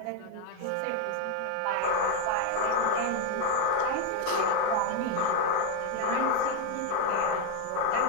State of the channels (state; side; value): different; both; correlation 0.02